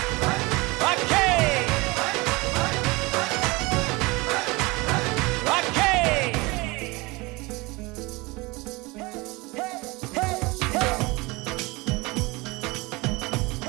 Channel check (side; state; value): left; quieter; 24.0 dB